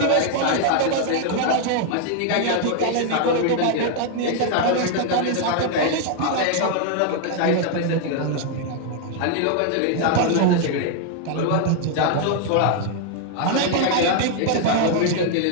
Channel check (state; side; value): different; both; correlation 0.00